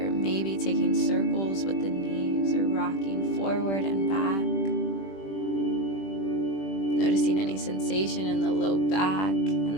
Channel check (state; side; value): late; right; 21 ms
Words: Maybe taking circles with the knees or rocking forward and back. Noticing any sensation in the low back, and